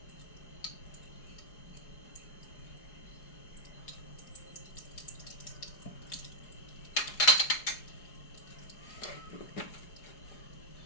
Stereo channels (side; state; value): right; late; 4.8 ms